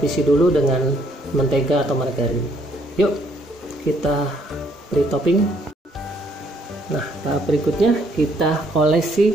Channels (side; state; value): both; normal; correlation 0.68